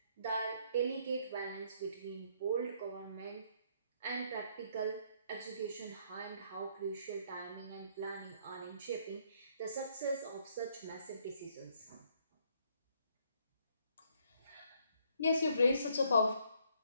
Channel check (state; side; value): inverted; both; correlation -0.68